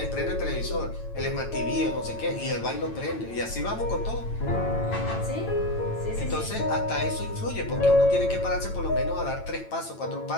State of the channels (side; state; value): right; late; 9.0 ms